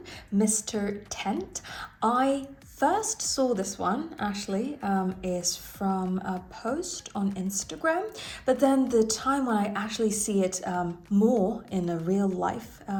Mr. Tent. I first saw this one actually is from a post on Instagram, but then the time when I actually see it more in a real life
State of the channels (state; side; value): identical; both; correlation 1.00